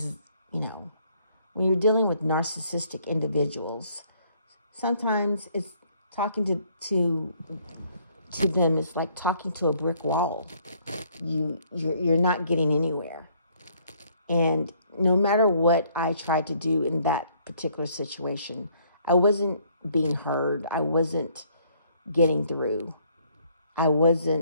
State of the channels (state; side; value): inverted; both; correlation -0.64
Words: when you're dealing with narcissistic individuals, sometimes it's talking to them is like talking to a brick wall. You're not getting anywhere. And no matter what I tried to do in that particular situation, I wasn't being heard. I wasn't getting through.